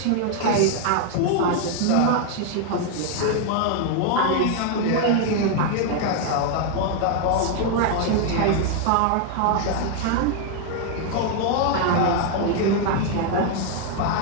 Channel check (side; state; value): both; different; correlation 0.00